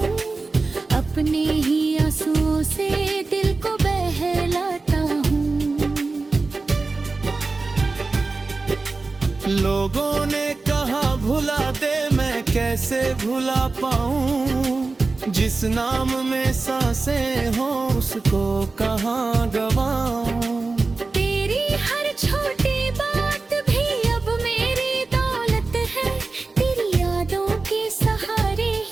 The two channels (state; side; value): quieter; left; 3.7 dB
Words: अपने ही आंसुओं से दिल को बहलाता हूँ। लोगों ने कहा भुला दे, मैं कैसे भुला पाऊँ, जिस नाम में सांसें हो उसको कहाँ गवाऊं। तेरी हर छोटी बात भी अब मेरी दौलत है, तेरी यादों के सहारे